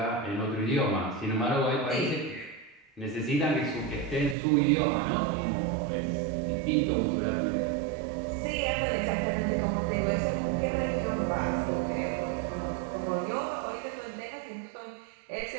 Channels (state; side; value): drops out; left; at 4.4 s